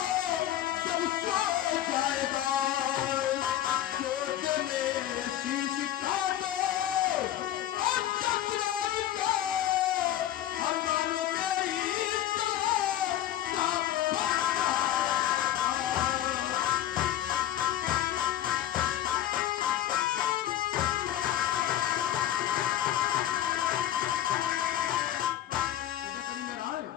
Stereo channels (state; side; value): quieter; right; 12.4 dB